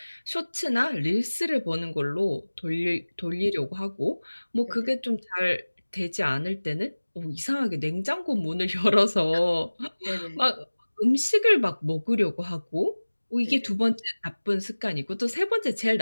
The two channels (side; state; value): both; inverted; correlation -1.00